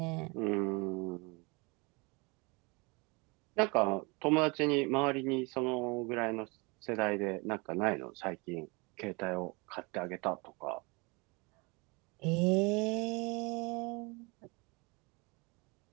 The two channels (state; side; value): quieter; left; 28.2 dB